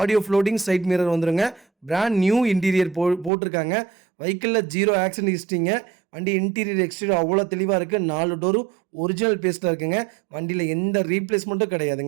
floating, side mirror வந்துடுங்க. பிராண்ட் நியூ இன்டீரியர் போட்டிருக்காங்க. வெஹிக்கிளில் 0 ஆக்சிடென்ட் ஹிஸ்ட்ரிங்க. வண்டி இன்டீரியர் எக்ஸ்டீரியர் அவ்வளோ தெளிவாக இருக்குது. 4 டோரும் ஒரிஜினல் பேஸ்ட்டில் இருக்குங்க. வண்டியில் எந்த ரீப்ளேஸ்மெண்ட்டும்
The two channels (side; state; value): left; drops out; at 3.3 s